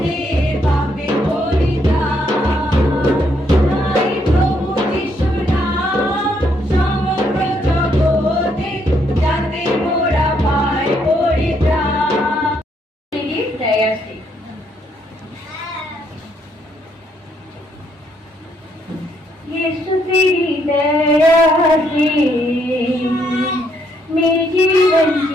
পাপের পরিত্রাণ। তাই প্রভু যিশু নাম সমগ্র জগতে, যাতে মোরা পাই পরিত্রাণ। यीशु तेरी दया से मैं जीवन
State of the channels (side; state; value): both; normal; correlation 0.73